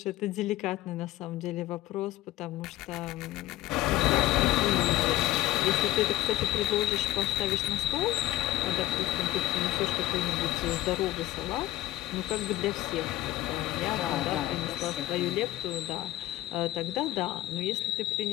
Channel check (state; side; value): quieter; right; 15.5 dB